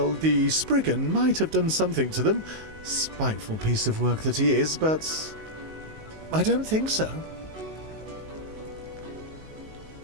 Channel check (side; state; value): left; late; 19 ms